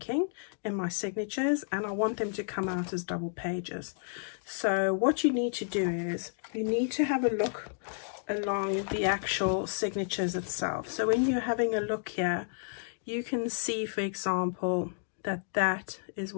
in my signatures, and I want them to come out as double pages. So what you need to do is, you need to have a look along the actual signatures itself. So when you're having a look here, you can see, for example, that is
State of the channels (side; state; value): right; silent; digital silence